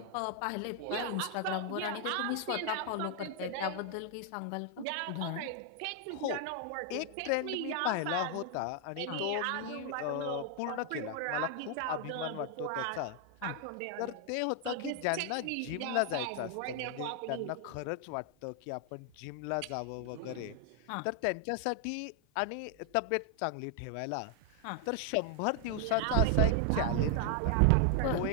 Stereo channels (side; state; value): both; different; correlation 0.00